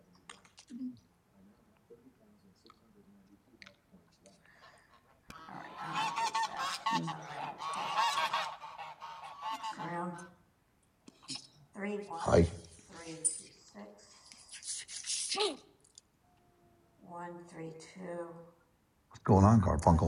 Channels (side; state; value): both; identical; correlation 1.00